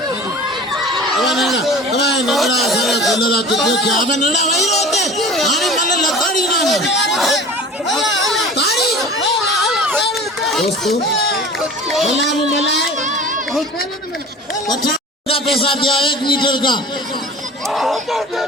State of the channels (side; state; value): both; normal; correlation 0.40